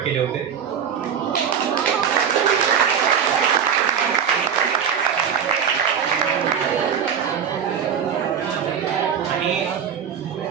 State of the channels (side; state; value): left; quieter; 7.7 dB